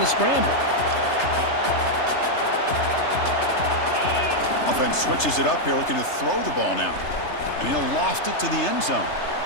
scramble. Offense switches it up here, looking to throw the ball now. And he'll loft it to the end zone.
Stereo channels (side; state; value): right; late; 3.3 ms